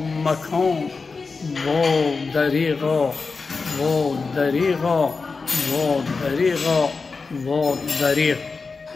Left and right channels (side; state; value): right; quieter; 4.4 dB